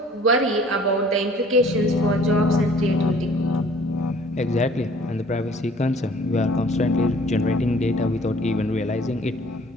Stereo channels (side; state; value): both; normal; correlation 0.53